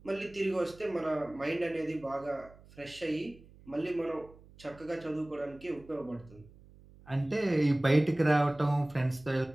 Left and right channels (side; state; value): right; noise; hum, 23 dB below the sound